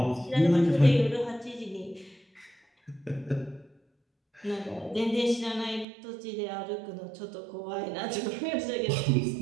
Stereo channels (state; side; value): drops out; left; at 5.9 s